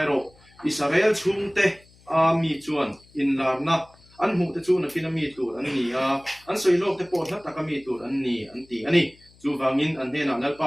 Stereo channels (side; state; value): left; noise; hum, 28 dB below the sound